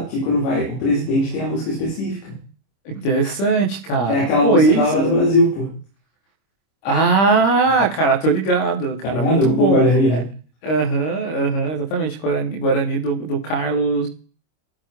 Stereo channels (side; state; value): right; late; 25 ms